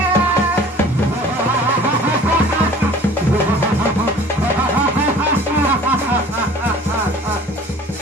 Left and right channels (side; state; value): both; normal; correlation 0.46